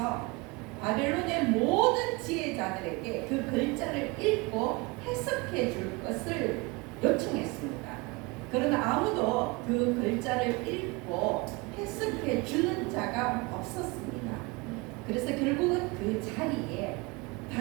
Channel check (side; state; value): left; quieter; 25.8 dB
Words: 바벨론의 모든 지혜자들에게 그 글자를 읽고 해석해 줄 것을 요청했습니다. 그러나 아무도 그 글자를 읽고 해석해 주는 자가 없었습니다. 그래서 결국은 그 자리에